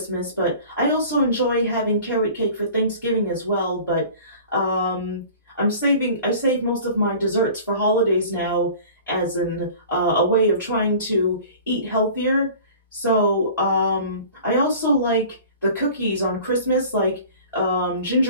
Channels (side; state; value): both; inverted; correlation -0.43